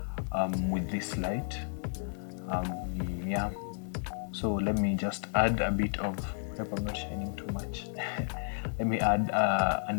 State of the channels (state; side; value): silent; right; digital silence